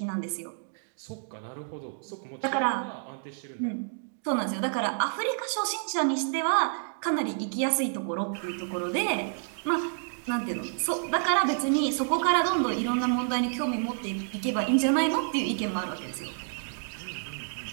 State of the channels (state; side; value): silent; left; digital silence